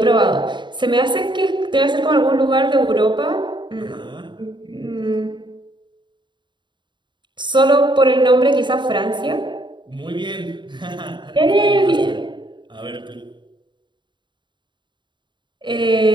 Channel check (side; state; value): left; late; 0.22 ms